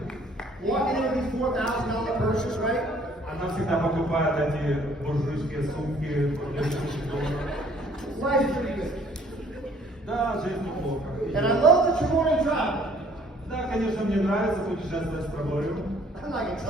walking in with these $4,000 purses, right? Она всегда покупает эти буржуйские сумки по $10,000. Life's pretty good. Да, жизнь неплохо. And I love that you're going to travel. Да, конечно, мне нравится путешествовать с Травориумом, I'm not going to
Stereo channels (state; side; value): normal; both; correlation 0.59